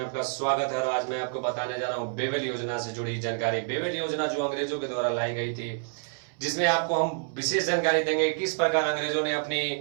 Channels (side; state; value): left; silent; 59 dB below the other